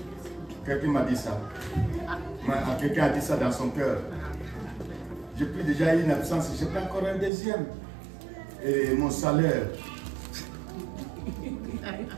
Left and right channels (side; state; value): left; drops out; at 7.3 s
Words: Quelqu'un m'a dit ça. Quelqu'un a dit ça dans son cœur. J'ai pris déjà une absence, je prends encore un deuxième. Et mon salaire.